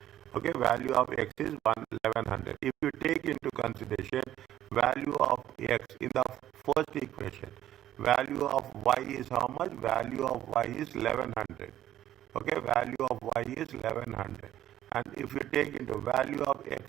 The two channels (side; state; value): left; quieter; 12.3 dB